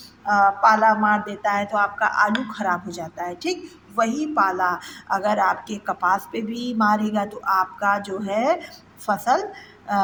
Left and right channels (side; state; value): both; identical; correlation 1.00